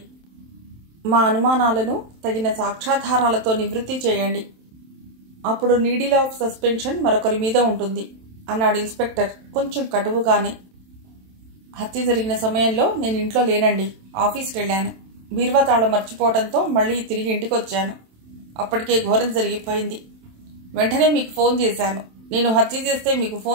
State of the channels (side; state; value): left; late; 27 ms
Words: మా అనుమానాలను తగిన సాక్ష్యాధారాలతో నివృత్తి చేయండి. అప్పుడు నీడిల్ ఆఫ్ సస్పెన్షన్ మరొకరి మీద ఉంటుంది అన్నాడు ఇన్స్పెక్టర్ కొంచెం కటువుగానే. హత్య జరిగిన సమయంలో నేను ఇంట్లో లేనండి. ఆఫీస్కి వెళ్ళాను. బీరువా తాళం మర్చిపోవడంతో మళ్ళీ తిరిగి ఇంటికి వచ్చాను. అప్పటికే ఘోరం జరిగిపోయింది. వెంటనే మీకు ఫోన్ చేశాను. నేను హత్య చేస్తే మీకు